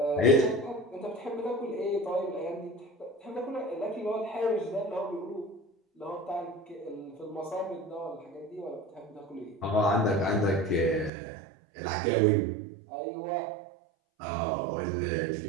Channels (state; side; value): drops out; left; at 11.1 s